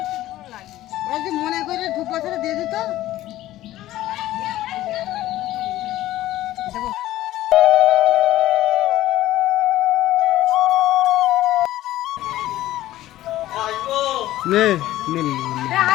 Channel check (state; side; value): quieter; right; 14.9 dB